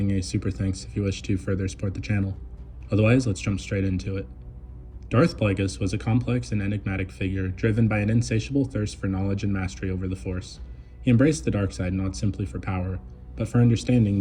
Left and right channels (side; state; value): both; identical; correlation 1.00